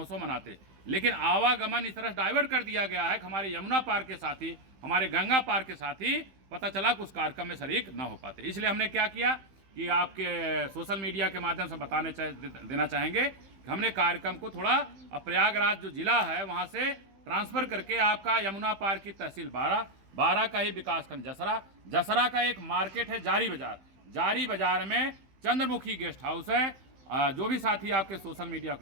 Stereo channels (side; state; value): left; late; 15 ms